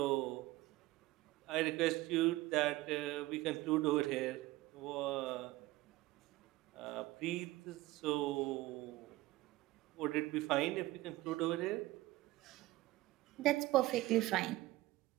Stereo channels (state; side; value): quieter; left; 18.3 dB